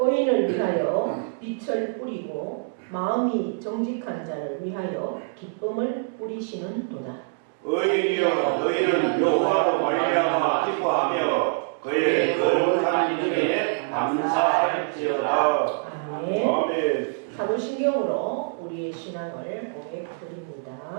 위하여 빛을 뿌리고 마음이 정직한 자를 위하여 기쁨을 뿌리시는 도다. 의인이여, 너희는 여호와로 말미암아 기뻐하며 그의 거룩한 이름에 감사할지어다. 아멘. 아멘. 사도신경으로 우리의 신앙을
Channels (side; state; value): left; silent; digital silence